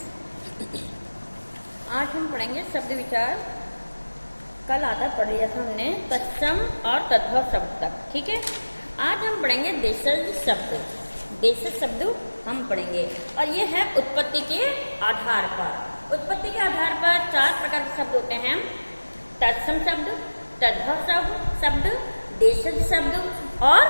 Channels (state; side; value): inverted; both; correlation -1.00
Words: आज हम पढ़ेंगे शब्द विचार। कल आधा पढ़ लिया था हमने तत्सम और तद्भव शब्द तक, ठीक है। आज हम पढ़ेंगे देशज शब्द। देशज शब्द हम पढ़ेंगे और ये है उत्पत्ति के आधार पर। उत्पत्ति के आधार पर 4 प्रकार के शब्द होते हैं: तत्सम शब्द, तद्भव शब्द, देशज शब्द और